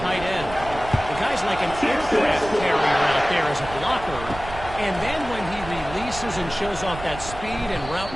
end. The guy's like an aircraft carrier out there as a blocker. And then when he releases and shows off that speed and route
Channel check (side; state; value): right; noise; rumble, 12 dB below the sound